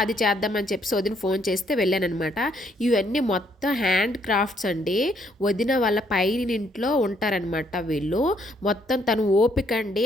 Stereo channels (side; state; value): both; normal; correlation 0.70